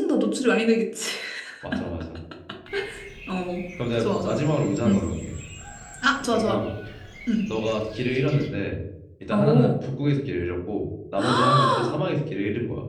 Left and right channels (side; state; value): both; identical; correlation 1.00